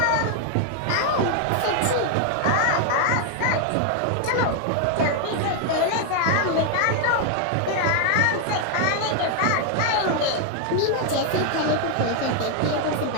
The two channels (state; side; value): different; both; correlation 0.00